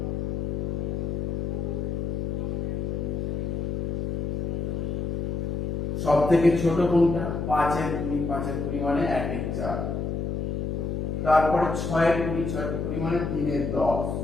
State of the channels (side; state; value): left; noise; hum, 1 dB below the sound